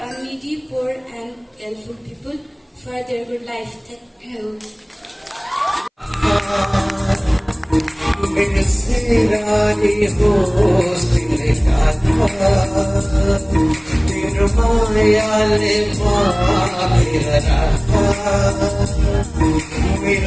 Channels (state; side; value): identical; both; correlation 1.00